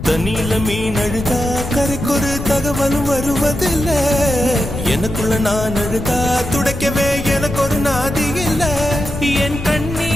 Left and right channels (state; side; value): noise; left; rumble, 9 dB below the sound